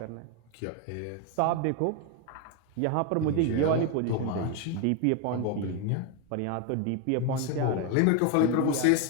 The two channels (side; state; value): both; different; correlation 0.02